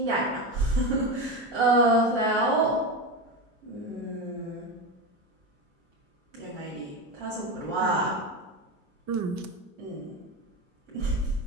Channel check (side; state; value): both; normal; correlation 0.19